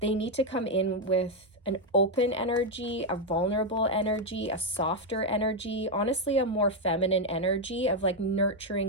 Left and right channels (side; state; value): both; normal; correlation 0.03